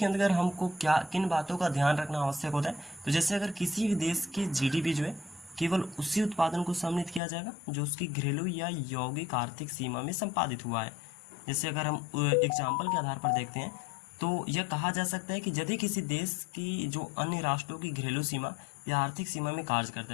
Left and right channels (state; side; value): drops out; right; at 7.2 s